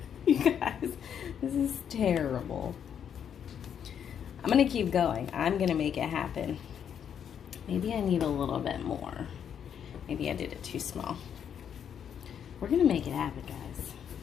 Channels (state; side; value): quieter; right; 8.4 dB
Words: you guys, this is terrible. I'm gonna keep going. I'm gonna make it happen. Maybe I need a little bit more. Maybe I did it too small. We're gonna make it happen, guys.